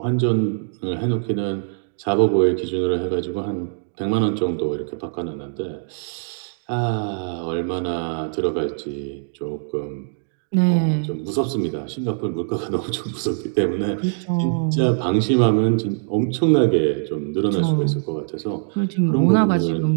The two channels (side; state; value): left; silent; digital silence